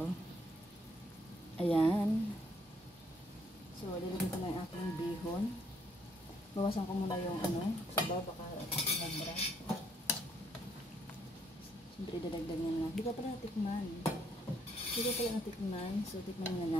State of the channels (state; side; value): normal; both; correlation 0.69